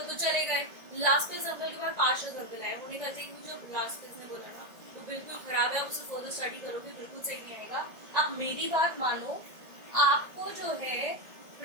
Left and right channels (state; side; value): late; left; 1.9 ms